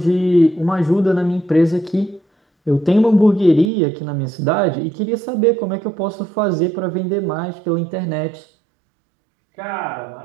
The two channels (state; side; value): drops out; left; at 3.7 s